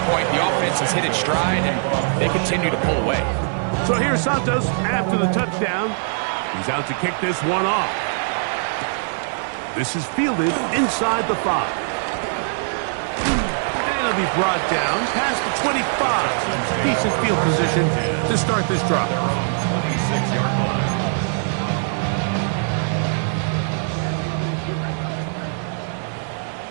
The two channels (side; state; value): left; silent; digital silence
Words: point, the offense has hit its stride, and they continue to pull away. So here's Santos after the touchdown. He's out to kick this one off. This is fielded inside the 5. And he'll be brought down past the 25. Decent field position to start this drive. 26-yard line.